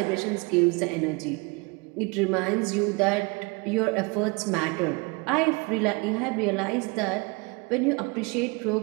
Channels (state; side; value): quieter; left; 28.3 dB